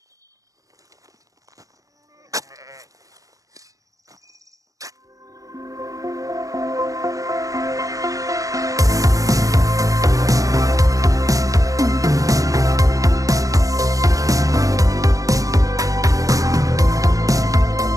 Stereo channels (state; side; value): late; left; 0.16 ms